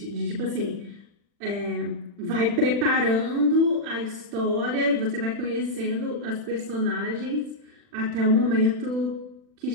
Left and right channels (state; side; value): late; left; 40 ms